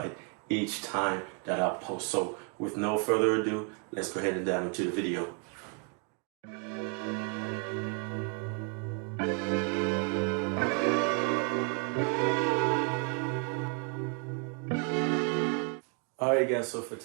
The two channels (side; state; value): left; quieter; 36.1 dB